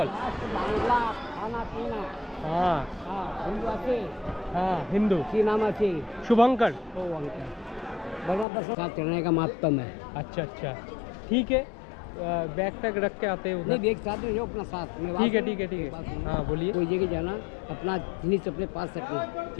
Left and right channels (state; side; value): drops out; right; at 8.5 s